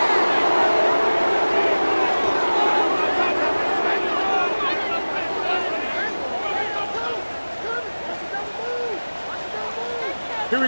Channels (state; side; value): inverted; both; correlation -1.00